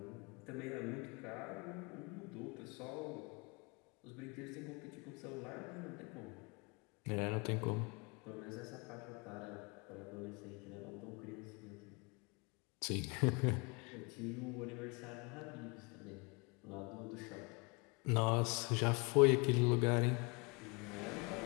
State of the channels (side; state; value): right; quieter; 30.3 dB